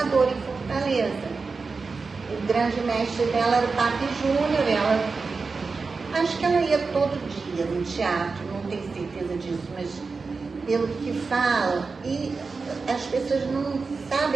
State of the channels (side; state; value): left; quieter; 4.4 dB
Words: em Fortaleza. O grande mestre dela era o Papi Júnior. Acho que ela ia todo dia no teatro, não tenho certeza disso, mas pelo que fala, e as pessoas não